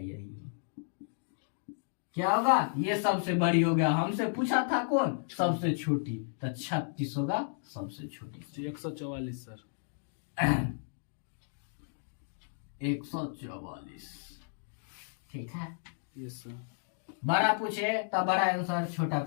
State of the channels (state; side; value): silent; right; digital silence